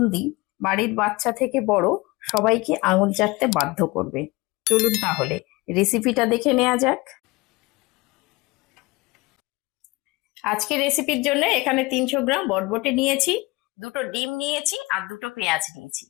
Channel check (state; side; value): quieter; right; 23.1 dB